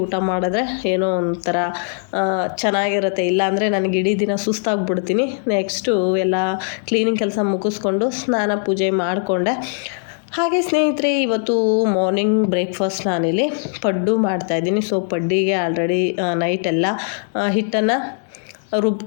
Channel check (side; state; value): right; silent; digital silence